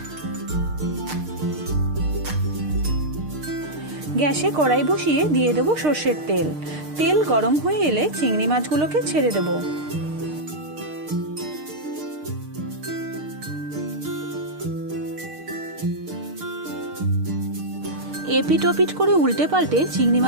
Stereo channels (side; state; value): left; late; 6.6 ms